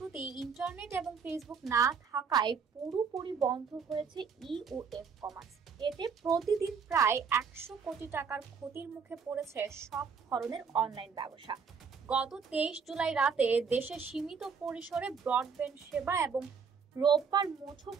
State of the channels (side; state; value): left; quieter; 6.0 dB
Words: ইন্টারনেট এবং ফেসবুক না থাকায় পুরোপুরি বন্ধ হয়েছে ই ও এফ কমার্স। এতে প্রতিদিন প্রায় 100 কোটি টাকার ক্ষতির মুখে পড়েছে সব ধরনের অনলাইন ব্যবসা। গত 23 জুলাই রাতে দেশে সীমিত পরিসরে ব্রডব্যান্ড সেবা এবং রোববার